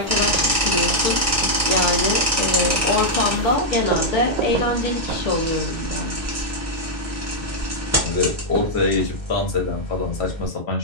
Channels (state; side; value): normal; both; correlation -0.05